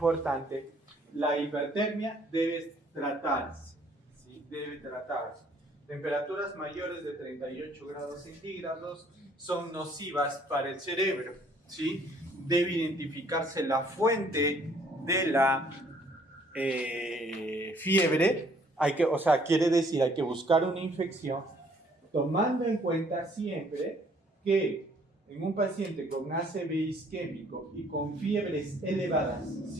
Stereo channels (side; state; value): both; normal; correlation 0.62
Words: La hipertermia debe tratarse. Debe tratarse. Temperaturas mayores de 38 grados centígrados son nocivas para el cerebro, ¿sí? Debe identificarse la fuente de la fiebre, quiere decir, hay que buscar una infección, tomando en cuenta siempre que en un paciente con ACV isquémico y con fiebres elevadas